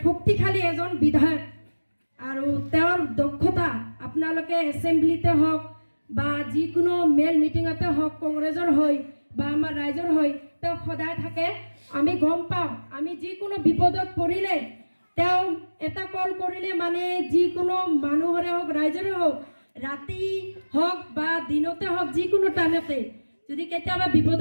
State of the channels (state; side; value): inverted; both; correlation -1.00